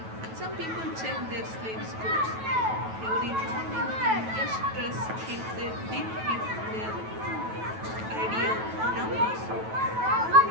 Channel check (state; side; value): late; left; 9.2 ms